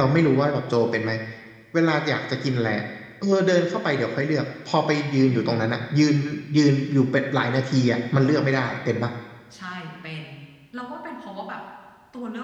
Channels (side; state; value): both; identical; correlation 1.00